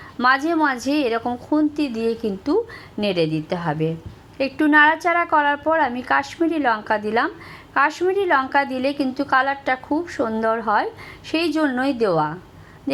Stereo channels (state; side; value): identical; both; correlation 1.00